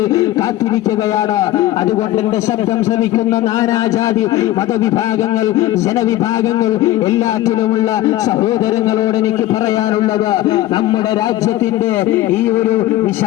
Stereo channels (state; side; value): quieter; right; 15.0 dB